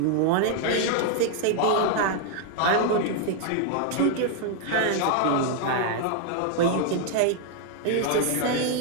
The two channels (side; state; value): both; different; correlation 0.00